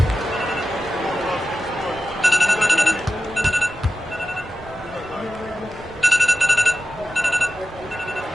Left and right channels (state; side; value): normal; both; correlation 0.93